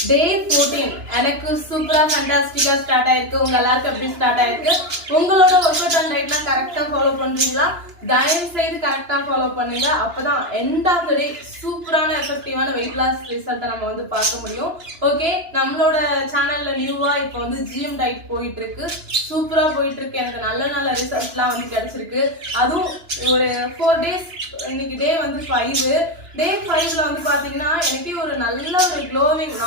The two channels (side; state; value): left; late; 2.9 ms